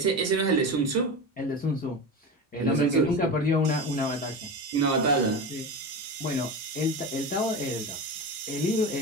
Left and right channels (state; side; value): normal; both; correlation 0.25